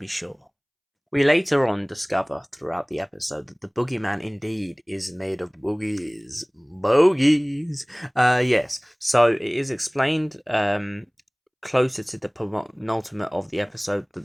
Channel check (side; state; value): both; identical; correlation 1.00